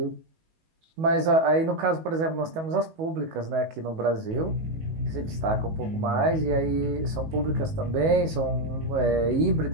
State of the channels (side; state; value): left; late; 19 ms